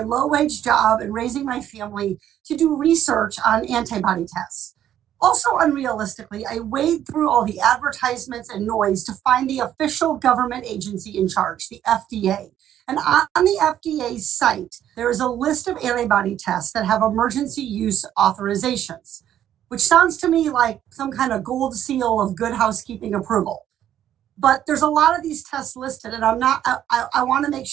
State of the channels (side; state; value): left; quieter; 11.0 dB